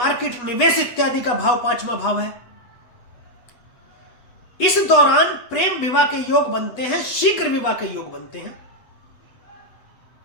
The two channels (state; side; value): late; right; 8.2 ms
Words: निवेश इत्यादि का भाव पांचवा भाव है। इस दौरान प्रेम विवाह के योग बनते हैं, शीघ्र विवाह के योग बनते हैं।